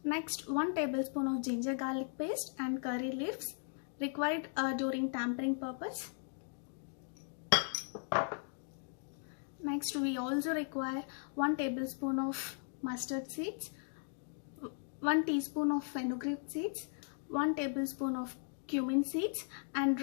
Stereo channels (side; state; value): right; silent; 53 dB below the other